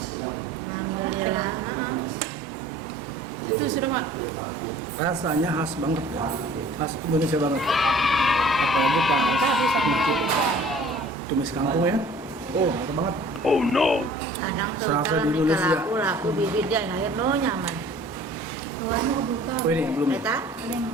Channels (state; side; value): normal; both; correlation 0.50